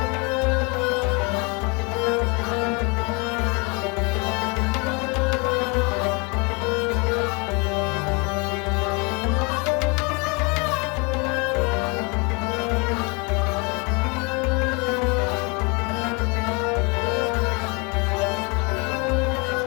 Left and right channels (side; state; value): right; quieter; 30.8 dB